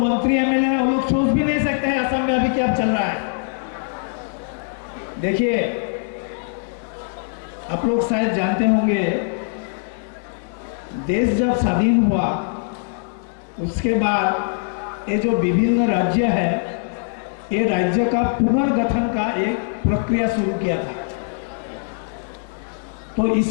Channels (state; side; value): silent; right; digital silence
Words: एमएलए है वो लोग सोच भी नहीं सकते हैं असम में अभी क्या चल रहा है। देखिए, आप लोग शायद जानते होंगे, देश जब स्वाधीन हुआ उसके बाद ये जो विभिन्न राज्य है, ये राज्य का पुनर्गठन का एक प्रक्रिया शुरू किया था। तो